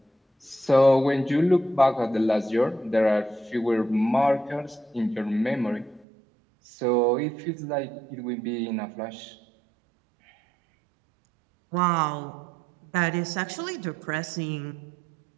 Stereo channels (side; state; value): left; drops out; at 6.1 s